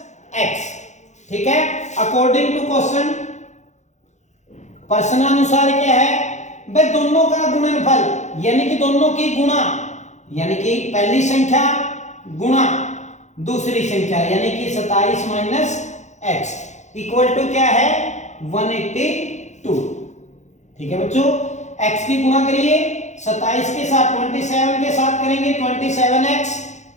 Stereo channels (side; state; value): right; late; 0.34 ms